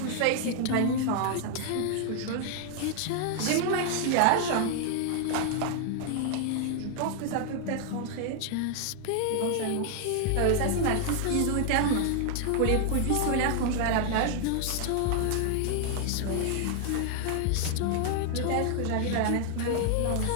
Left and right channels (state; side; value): different; both; correlation 0.00